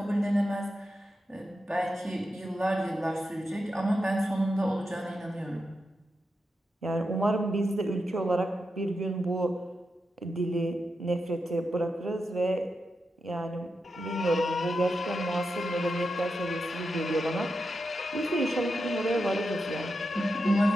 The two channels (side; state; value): both; normal; correlation 0.87